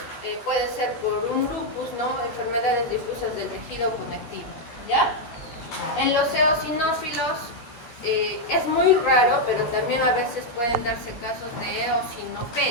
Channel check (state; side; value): late; right; 13 ms